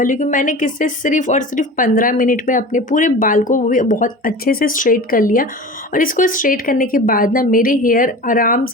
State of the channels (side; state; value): both; normal; correlation 0.34